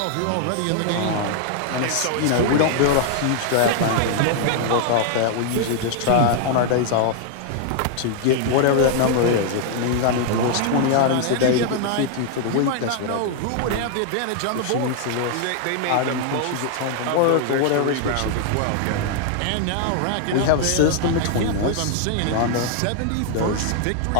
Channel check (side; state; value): both; different; correlation 0.00